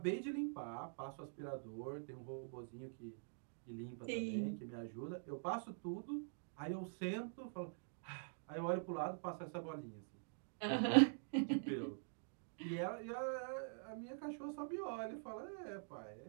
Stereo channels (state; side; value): silent; left; digital silence